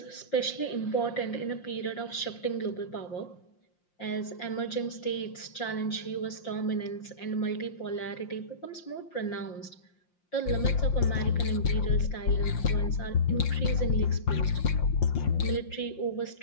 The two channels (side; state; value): right; late; 5.7 ms